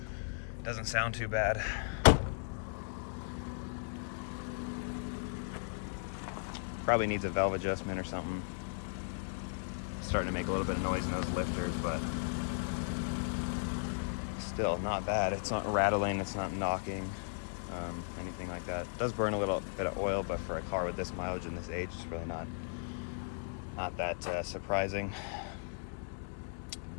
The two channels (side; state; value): right; silent; digital silence